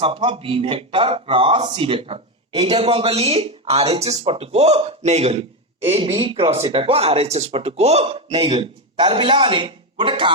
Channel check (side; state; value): both; normal; correlation 0.10